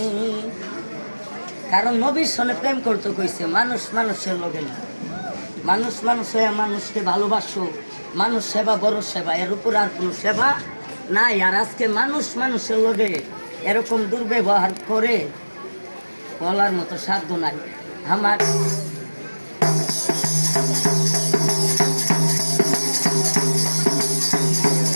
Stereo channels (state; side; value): inverted; both; correlation -1.00